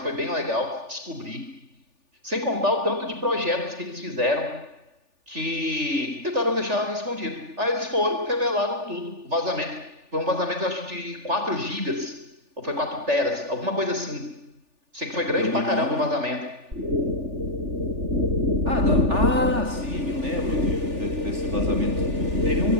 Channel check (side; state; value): left; late; 3.4 ms